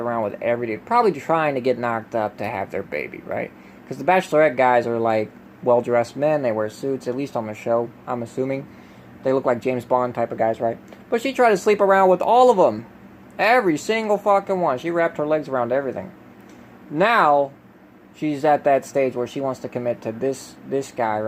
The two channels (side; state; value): both; identical; correlation 1.00